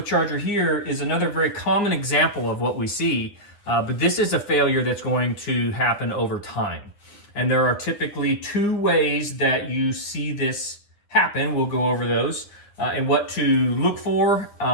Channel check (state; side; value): late; right; 9.8 ms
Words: here is another very common example of what we see, but this is a failure that's going to happen over time. And there are typically two ways that you see this happen. We'll go over those and what to look for